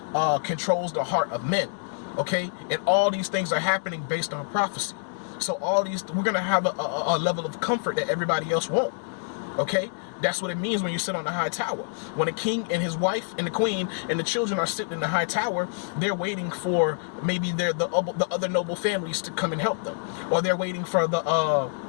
controls the heart of men. Okay, and all these things are happening based on prophecy. So we're going to have a level of comfort that everybody else won't. Okay, that's what it means when you sit on the high tower. When a king and his wife and the queen and the children are sitting in the high tower, they're waiting for maybe the other noble families to come and help them. Or they're waiting for the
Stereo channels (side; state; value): right; silent; digital silence